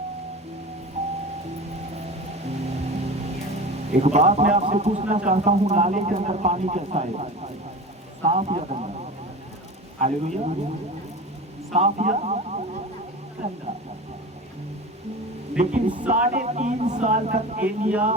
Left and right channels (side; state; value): both; normal; correlation 0.32